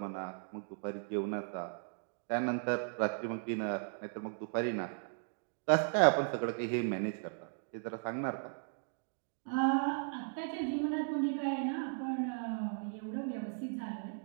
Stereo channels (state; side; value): silent; left; 53 dB below the other